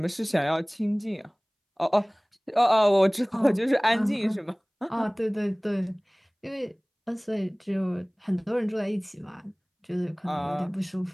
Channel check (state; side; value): identical; both; correlation 1.00